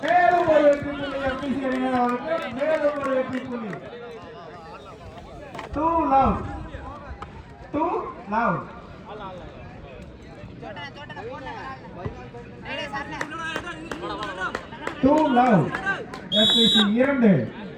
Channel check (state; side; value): identical; both; correlation 1.00